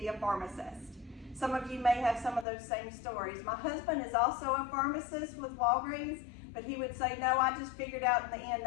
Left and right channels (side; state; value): right; drops out; at 2.5 s